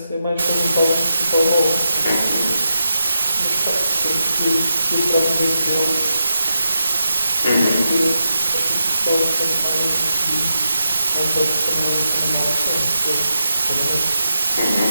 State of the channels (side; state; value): both; inverted; correlation -0.87